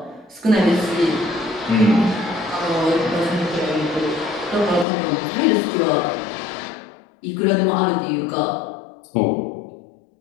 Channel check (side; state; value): right; drops out; at 4.9 s